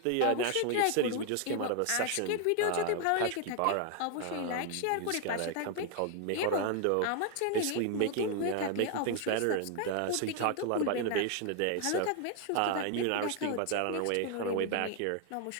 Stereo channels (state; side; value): different; both; correlation 0.00